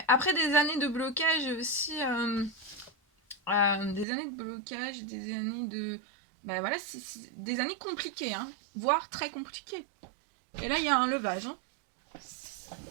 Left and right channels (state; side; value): drops out; left; at 4.0 s